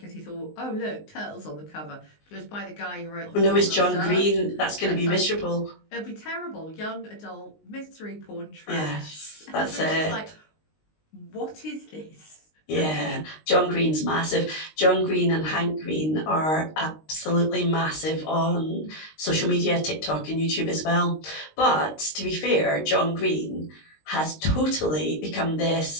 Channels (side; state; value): right; late; 19 ms